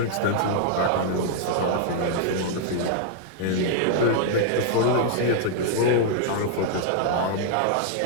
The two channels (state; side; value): different; both; correlation -0.01